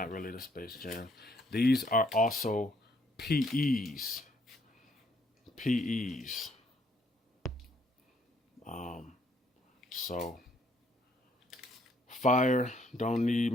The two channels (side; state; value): both; normal; correlation 0.68